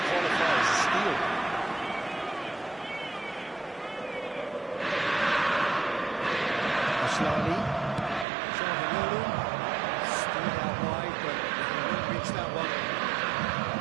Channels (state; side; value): drops out; left; at 8.2 s